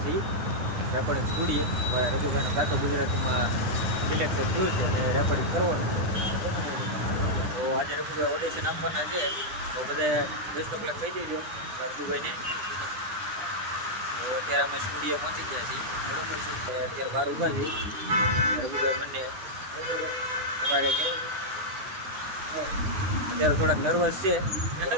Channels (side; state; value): left; late; 9.4 ms